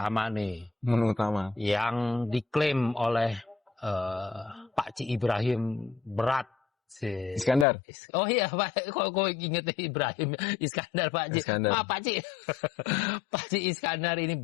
nih. Menu utama. Yang diklaim oleh Pak Ci Ibrahim berat sih. Iskandar. Oh iya, Pak. Kok inget Ibrahim Iskandar Pak Ci. Maaf Pak Ci. Pak Ci Iskandar ini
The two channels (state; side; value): drops out; right; at 7.7 s